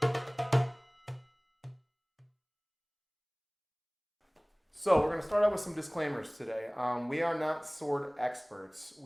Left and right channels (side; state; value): both; identical; correlation 1.00